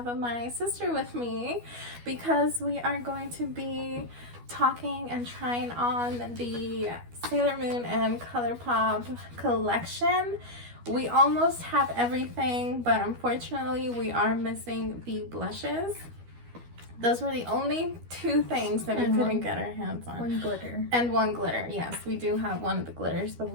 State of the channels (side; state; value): left; late; 12 ms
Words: my sister with me because we are going to be talking and trying on the Sailor Moon and Colourpop collection. We almost have everything, but unfortunately we are missing the blushes. Those were the only two things that we couldn't get our hands on. One glitter. And one glitter, yes. We do have one of the glitters, but